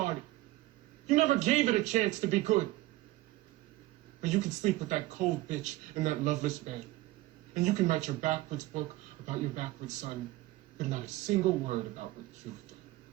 You never gave it a chance to be good. But you can sleep with that cold bitch in that loveless bed. And you can write your backwards book about your backwards son, but not a single word about what you've done.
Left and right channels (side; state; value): left; quieter; 17.7 dB